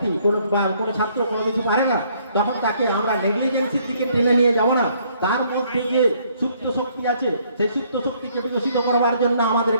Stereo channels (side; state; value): both; inverted; correlation -0.66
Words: কোনো ছাত্র কোনো কিছু পারে না, তখন তাকে আমরা নেগলিজেন্সির দিকে টেনে নিয়ে যাব না। তার মধ্যে যে সুপ্ত শক্তি আছে, সেই সুপ্ত শক্তিকে বিকশিত করবার জন্য